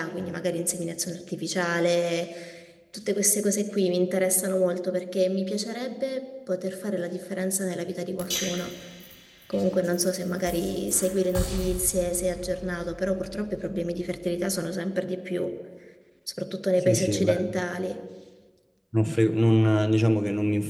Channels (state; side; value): identical; both; correlation 1.00